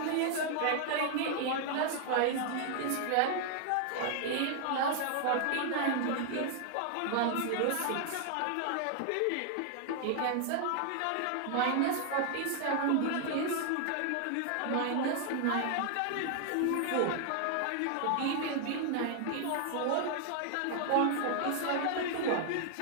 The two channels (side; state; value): both; different; correlation 0.00